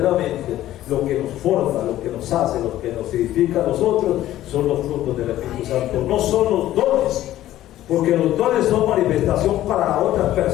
lo que nos forma, lo que nos hace, lo que nos edifica a nosotros, son los frutos del Espíritu Santo. No son los dones, porque los dones son manifestación para otras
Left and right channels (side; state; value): right; quieter; 13.8 dB